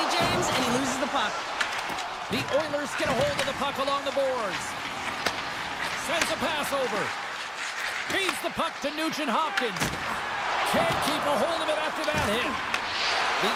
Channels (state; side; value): identical; both; correlation 1.00